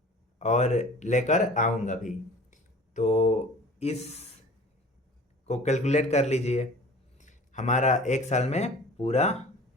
और लेकर आऊँगा भी। तो इस को कैलकुलेट कर लीजिए, हमारा 1 साल में पूरा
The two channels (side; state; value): both; normal; correlation 0.44